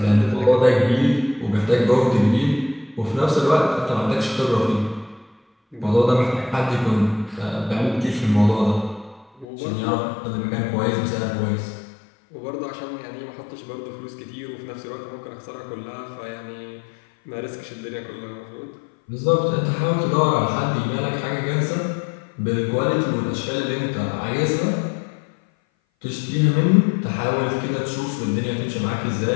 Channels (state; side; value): drops out; right; at 9.5 s